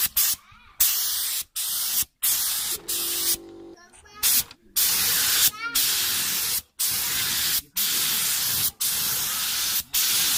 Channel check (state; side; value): identical; both; correlation 1.00